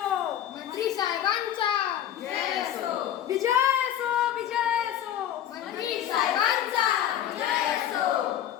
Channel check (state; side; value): quieter; right; 11.0 dB